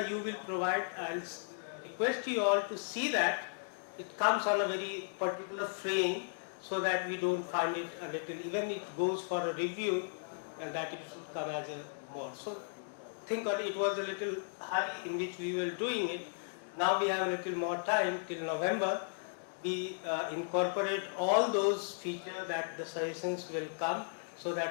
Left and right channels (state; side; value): silent; right; digital silence